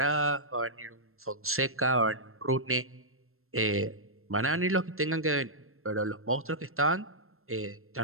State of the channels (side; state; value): left; late; 0.62 ms